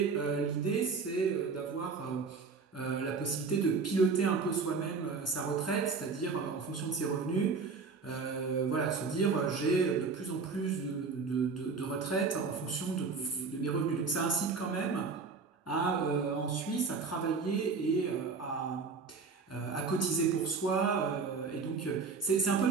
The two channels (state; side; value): quieter; left; 4.8 dB